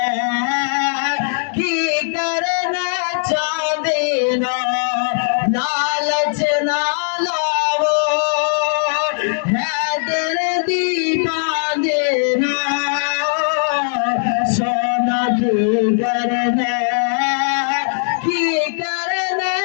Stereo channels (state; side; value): silent; right; 67 dB below the other